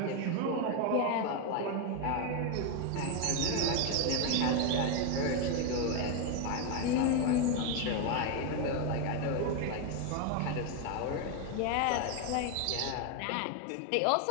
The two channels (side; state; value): both; different; correlation 0.01